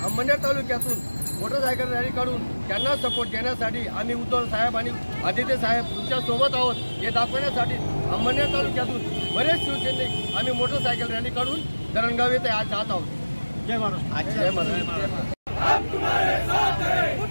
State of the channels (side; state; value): both; inverted; correlation -1.00